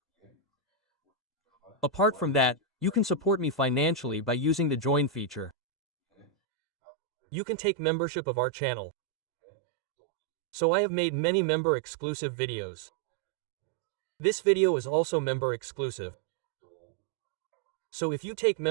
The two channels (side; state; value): left; drops out; at 6.2 s